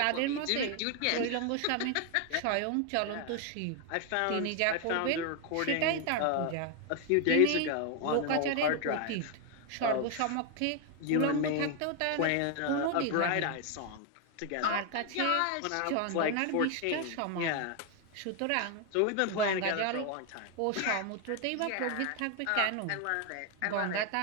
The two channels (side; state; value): both; different; correlation 0.01